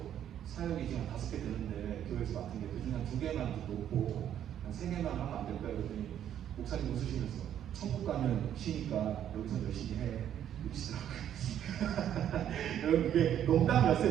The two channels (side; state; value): left; quieter; 10.3 dB